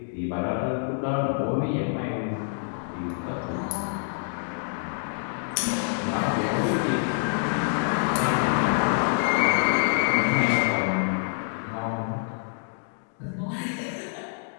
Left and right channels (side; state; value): right; silent; digital silence